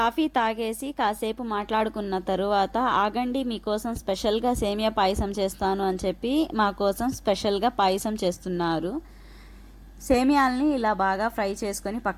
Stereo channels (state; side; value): identical; both; correlation 1.00